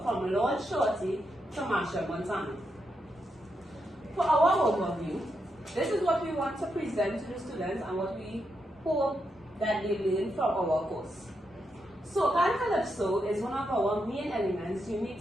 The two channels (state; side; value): normal; both; correlation 0.83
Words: from Lord Shorty to Machel Montano. For our overview, this is what we want to present to the students and what we hope that they learn from our course. Soca and Calypso is one of our main elements unique